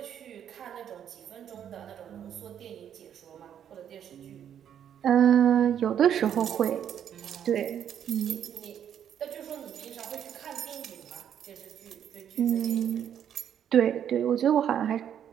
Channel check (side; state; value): left; quieter; 9.4 dB